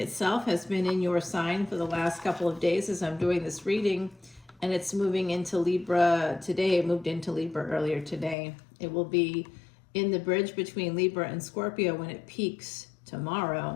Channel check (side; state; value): right; drops out; at 8.3 s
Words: has been in your sign for the last couple of days as I'm doing this reading, and it's moving into Libra today. It moved into Libra earlier today. It will be in the bridge between Libra and Scorpio when it peaks